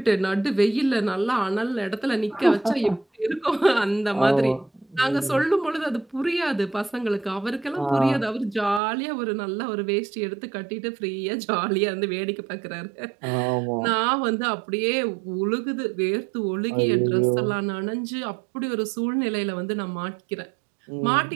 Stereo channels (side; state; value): left; drops out; at 8.8 s